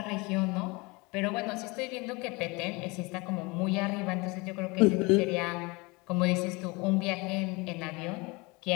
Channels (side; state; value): right; quieter; 26.1 dB